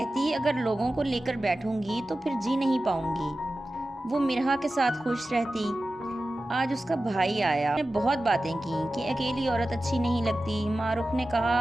اگر لوگوں کو لے کر بیٹھوں گی تو پھر جی نہیں پاؤں گی۔ وہ مرحا کے ساتھ خوش رہتی۔ آج اس کا بھائی آیا، نے بہت باتیں کی کہ اکیلی عورت اچھی نہیں لگتی۔ ماہ رخ نے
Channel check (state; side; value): normal; both; correlation 0.94